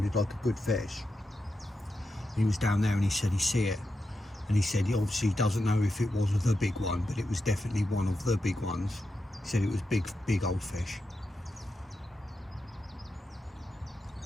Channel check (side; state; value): both; normal; correlation 0.88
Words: like a good fish. He was down there and he said he see it, and he said he obviously doesn't know if it was the big one, but it was definitely one of the big ones. He said it was big old fish.